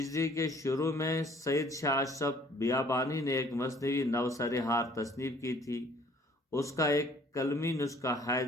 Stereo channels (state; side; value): normal; both; correlation 0.57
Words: کے شروع میں سید شاہ اشرف بیابانی نے ایک مثنوی نوسر ہار تصنیف کی تھی۔ اس کا ایک قلمی نسخہ